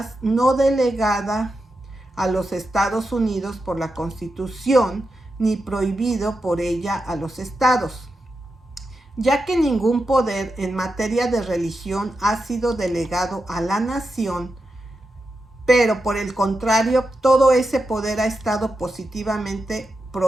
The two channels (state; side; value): normal; both; correlation 0.88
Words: no delegada a los Estados Unidos por la Constitución ni prohibido por ella a los estados, ya que ningún poder en materia de religión ha sido delegado a la nación, pero por el contrario, todo ese poder ha estado positivamente